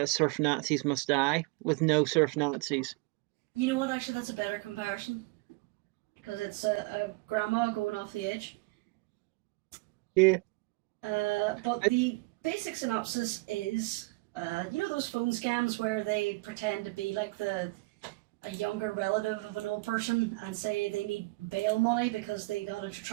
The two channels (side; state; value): left; quieter; 24.9 dB